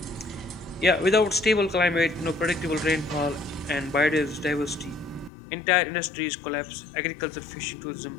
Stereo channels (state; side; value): drops out; right; at 5.3 s